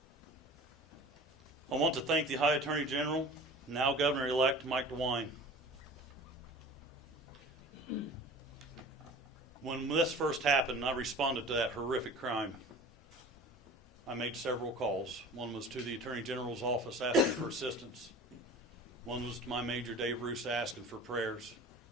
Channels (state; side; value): normal; both; correlation 0.41